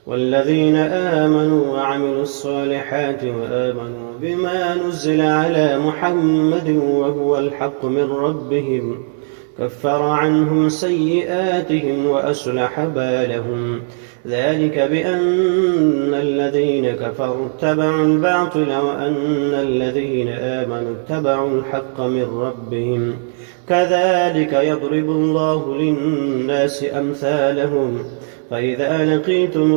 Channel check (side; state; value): left; silent; digital silence